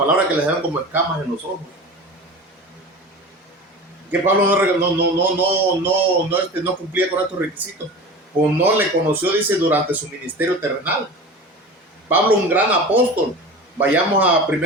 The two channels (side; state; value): both; normal; correlation 0.33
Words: que les dan como escamas en los ojos. Que Pablo no cumplía con estos requisitos, pues no le conoció, dice, durante su ministerio terrenal. Pablo, un gran apóstol. Vayamos a